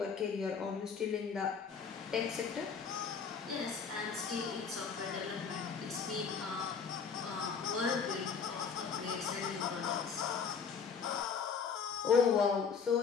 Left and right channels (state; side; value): quieter; right; 6.1 dB